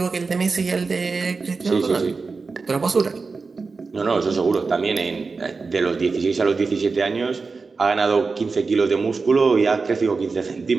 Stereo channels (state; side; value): quieter; left; 4.4 dB